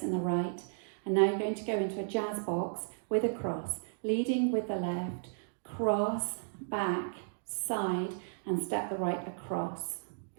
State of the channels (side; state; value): left; silent; digital silence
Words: in the right. And now you're going to go into a jazz box with a cross, leading with the left, cross, back, side, and step the right across,